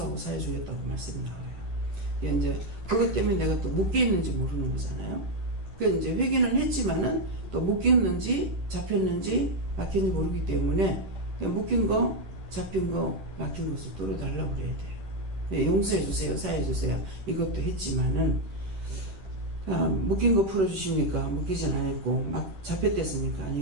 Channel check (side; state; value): left; late; 10 ms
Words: 사해주겠다고 말씀이 나와요. 이제 그것 때문에 내가 또 묶여 있는지 모르는 거잖아요. 그래서 이제 회개는 했지만은 또 묶였는지 잡혔는지 막혔는지 모르기 때문에 묶인 거, 잡힌 거, 막힌 것을 뚫어달라고 그래야 돼요. 네, 용서해주세요, 사해주세요. 이것도 했지만은 묶인 거 풀어주십니까? 묶이진 않았고 막 잡혔댔습니까?